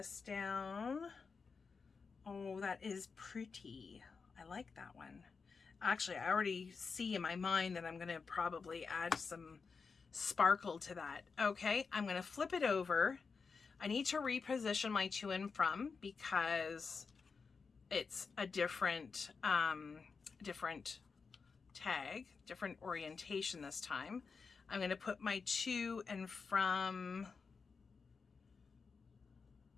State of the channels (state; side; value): quieter; right; 5.0 dB